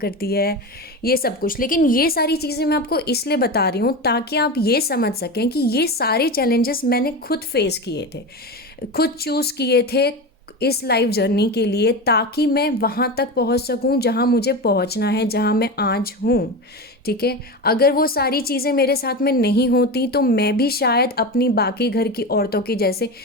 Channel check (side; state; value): both; normal; correlation 0.23